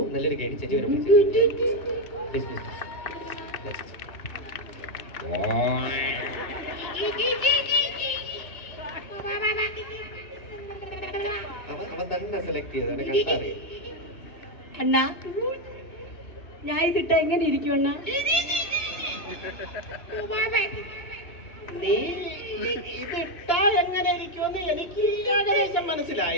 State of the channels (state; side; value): late; right; 2.9 ms